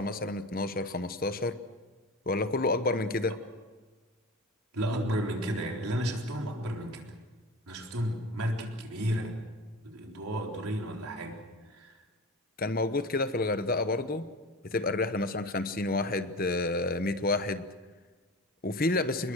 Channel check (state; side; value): normal; both; correlation 0.33